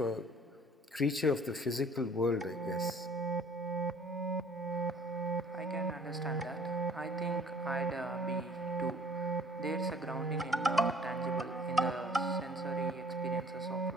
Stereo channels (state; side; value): normal; both; correlation 0.54